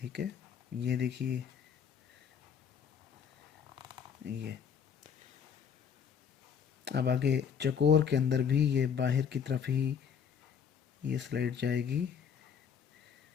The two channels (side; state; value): right; quieter; 7.3 dB